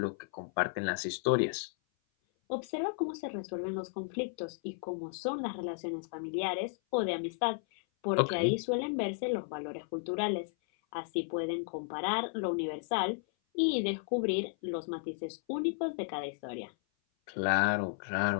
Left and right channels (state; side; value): silent; right; 55 dB below the other